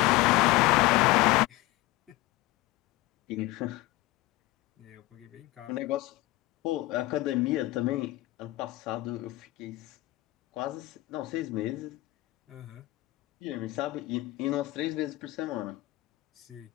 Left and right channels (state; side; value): quieter; right; 19.0 dB